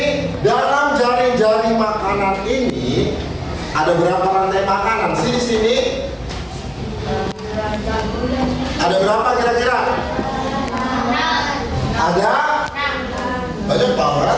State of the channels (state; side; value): identical; both; correlation 1.00